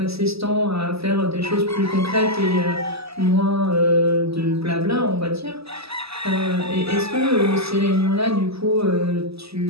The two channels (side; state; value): left; late; 0.78 ms